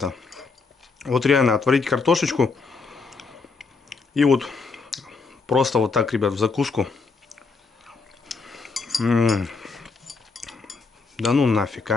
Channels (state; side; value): quieter; right; 4.5 dB